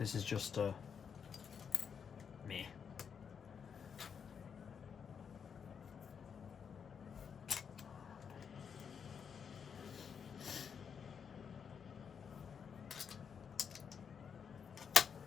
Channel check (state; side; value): quieter; right; 6.9 dB